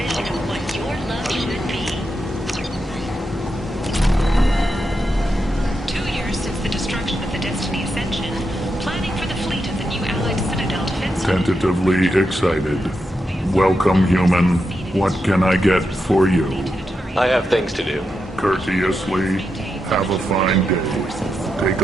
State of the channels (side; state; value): both; normal; correlation 0.86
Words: of what your love should be. 2 years since the destruction of the Destiny Ascension, planning for the fleet of the new Allied Citadel defense. Tentatively excited. Welcome, human. What can I get for you? I have things to do. Courteously, have a fine day. Take